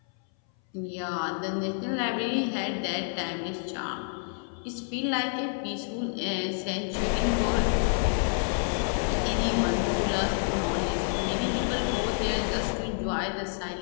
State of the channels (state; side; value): silent; right; 59 dB below the other